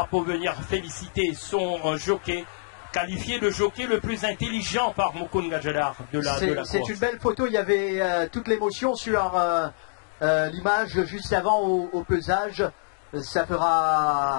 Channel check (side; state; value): right; silent; digital silence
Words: pour venir féliciter son jockey, qualifié de jockey le plus intelligent par Mukund Gajadhar de la course. C'est une belle photo, il y avait toute l'émotion sur l'image juste avant au pesage. Ça